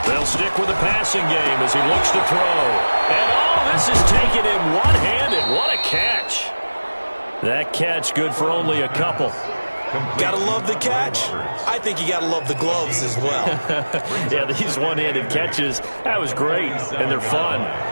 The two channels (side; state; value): both; inverted; correlation -1.00